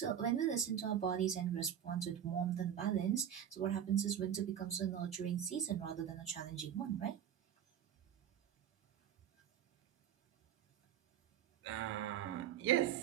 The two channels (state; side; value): quieter; left; 9.6 dB